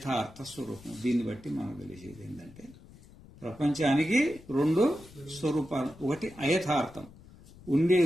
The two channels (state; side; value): noise; left; rumble, 21 dB below the sound